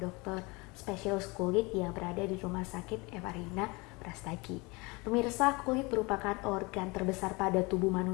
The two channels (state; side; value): quieter; right; 26.0 dB